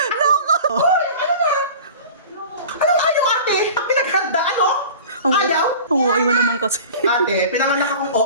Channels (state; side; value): inverted; both; correlation -0.39